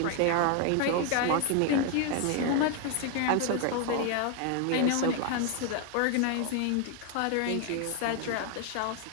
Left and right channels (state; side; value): different; both; correlation 0.01